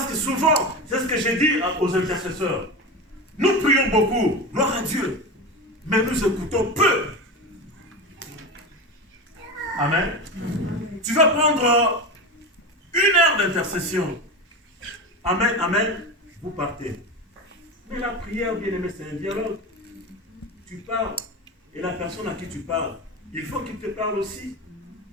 que souvent, c'est ce que j'ai dit aux intercesseurs, nous prions beaucoup, gloire à Dieu, mais nous écoutons peu. Amen. Tu vas prendre 1 heure d'intercession. Amen, amen. Vous partez. Mais la prière, bien aimé, c'est un dialogue. Tu parles. Et la personne à qui tu parles, il faut qu'il te parle aussi.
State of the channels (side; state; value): both; normal; correlation 0.23